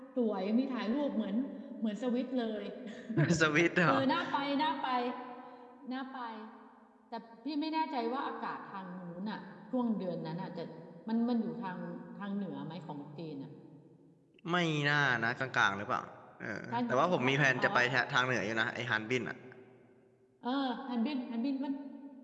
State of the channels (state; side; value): identical; both; correlation 1.00